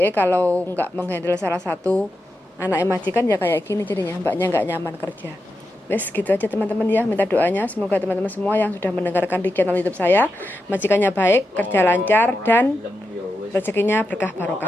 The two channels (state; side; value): normal; both; correlation 0.88